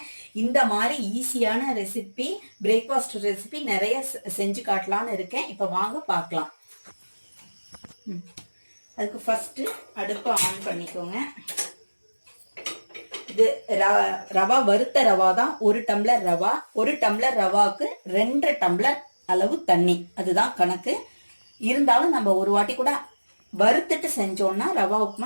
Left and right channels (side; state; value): both; inverted; correlation -1.00